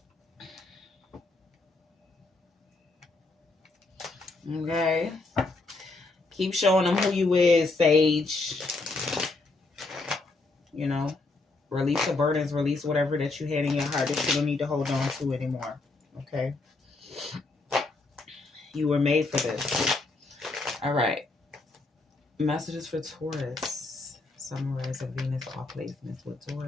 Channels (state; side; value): quieter; right; 3.4 dB